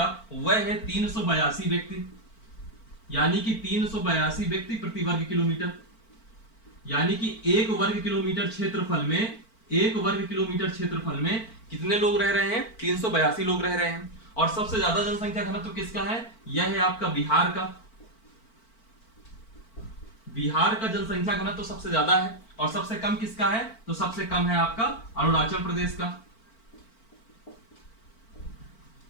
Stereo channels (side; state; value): right; late; 4.5 ms